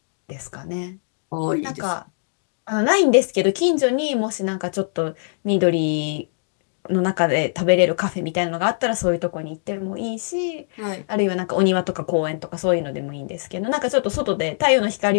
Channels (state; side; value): silent; right; digital silence